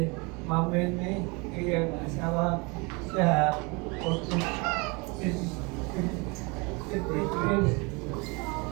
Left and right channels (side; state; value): left; quieter; 28.9 dB